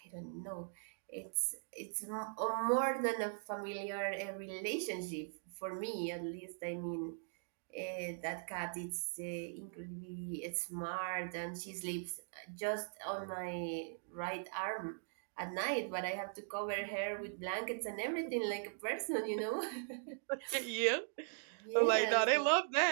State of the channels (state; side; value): silent; left; digital silence